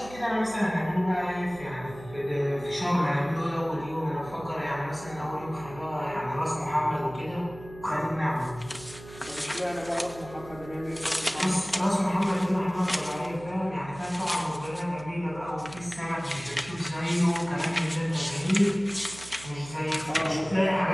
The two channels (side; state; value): right; noise; hum, 17 dB below the sound